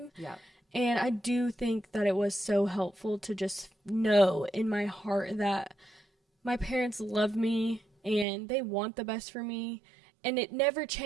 Yeah. And I do think that it was so helpful to just know in my heart that my parents love me and they want the best for me. And it never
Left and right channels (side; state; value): left; drops out; at 8.2 s